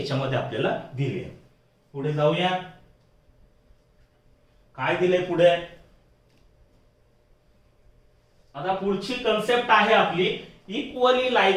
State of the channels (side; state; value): both; identical; correlation 1.00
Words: आपल्याला दिली आहे. पुढे जाऊया, काय दिले पुढे? आता पुढची कन्सेप्ट आहे आपली equally